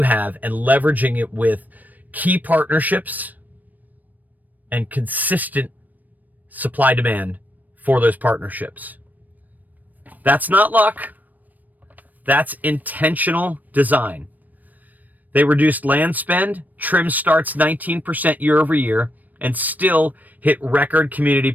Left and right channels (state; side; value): late; left; 0.083 ms